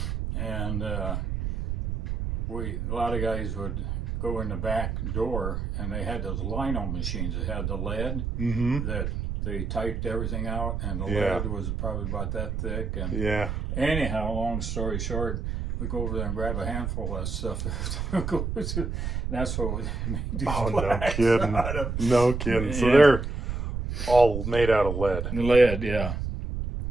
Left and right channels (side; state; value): right; noise; rumble, 2 dB below the sound